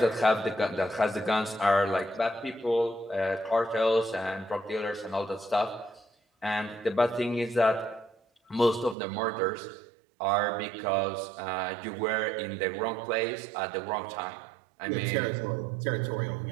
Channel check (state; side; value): drops out; left; at 9.0 s